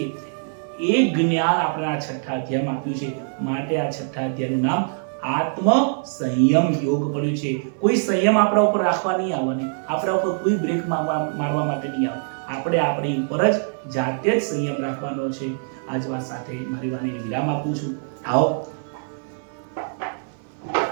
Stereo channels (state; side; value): silent; left; 57 dB below the other